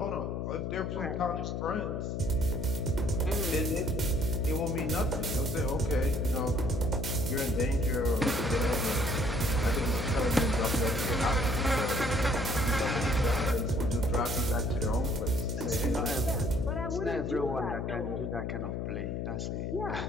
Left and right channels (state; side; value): noise; left; hum, 2 dB below the sound